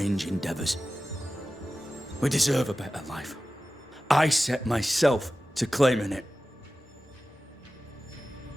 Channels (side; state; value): both; normal; correlation 0.95